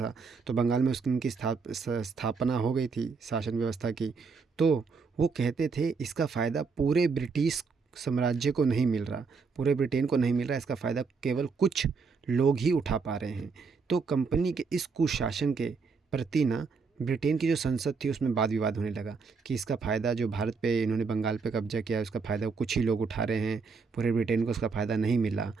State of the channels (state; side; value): quieter; left; 4.9 dB